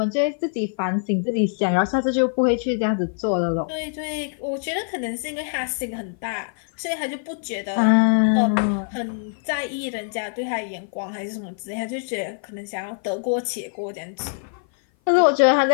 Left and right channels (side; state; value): right; silent; 56 dB below the other